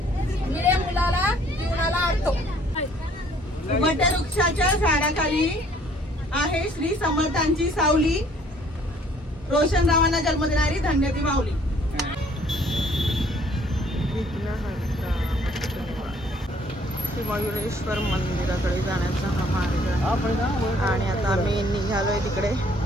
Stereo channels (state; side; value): normal; both; correlation 0.60